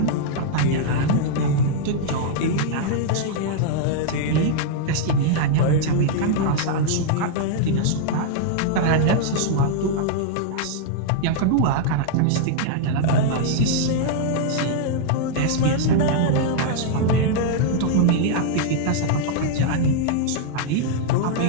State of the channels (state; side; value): different; both; correlation -0.01